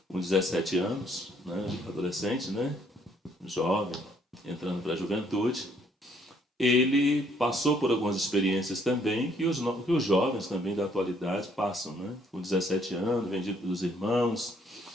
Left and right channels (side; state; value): both; normal; correlation 0.66